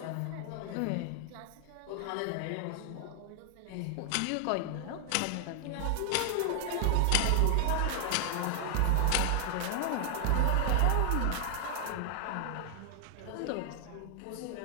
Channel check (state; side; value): different; both; correlation 0.00